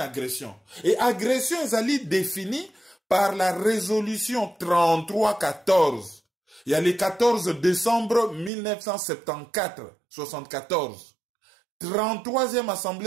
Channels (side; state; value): left; drops out; at 8.5 s